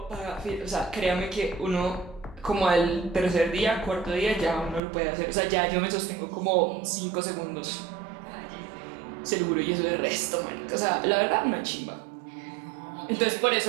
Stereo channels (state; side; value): drops out; left; at 4.8 s